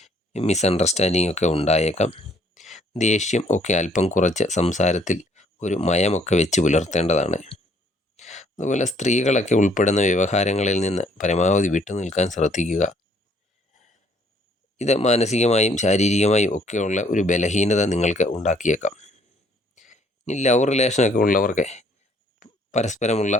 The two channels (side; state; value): both; normal; correlation 0.63